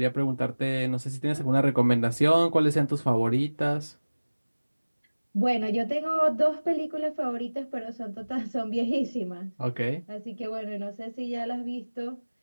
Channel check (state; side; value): inverted; both; correlation -1.00